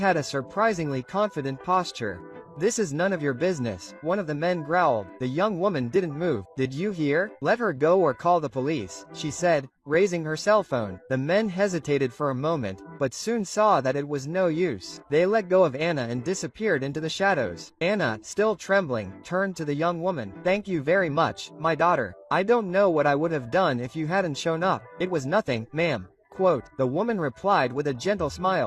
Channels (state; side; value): identical; both; correlation 1.00